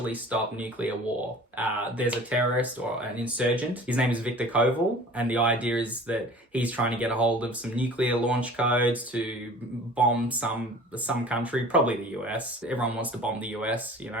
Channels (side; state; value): both; normal; correlation 0.44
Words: stop nuclear war. There's a terrorist or an insurgent. His name is Victor Koval, and the idea is that he's trying to get a hold of some nuclear launch codes to bomb some country, probably the US. Everyone wants to bomb the US, you